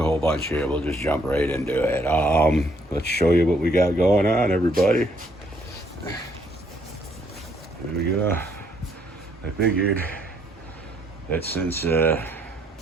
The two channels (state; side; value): normal; both; correlation 0.69